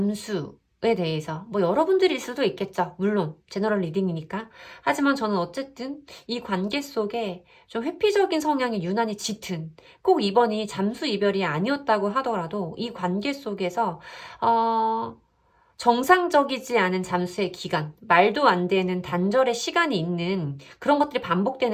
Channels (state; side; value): identical; both; correlation 1.00